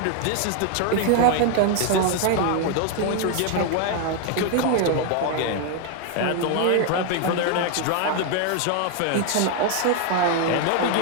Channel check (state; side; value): different; both; correlation 0.00